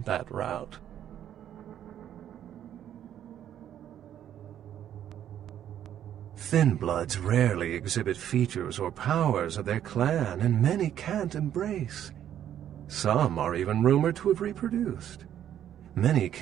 that route. Thin bloods rarely exhibit features or powers of their clan, and many can't embrace. Some are even rumored to have reproduced. Many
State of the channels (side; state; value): left; quieter; 10.6 dB